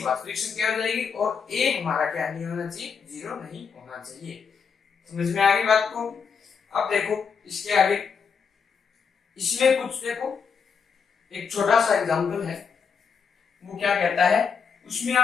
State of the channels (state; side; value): quieter; right; 6.1 dB